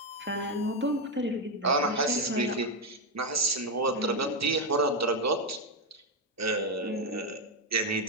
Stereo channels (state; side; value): normal; both; correlation 0.05